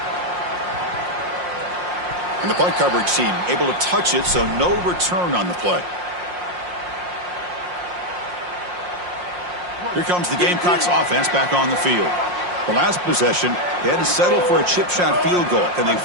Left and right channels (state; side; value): late; left; 5.6 ms